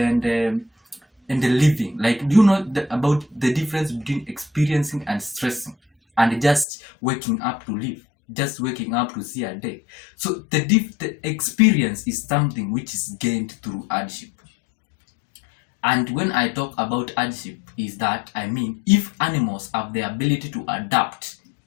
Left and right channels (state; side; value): drops out; right; at 6.7 s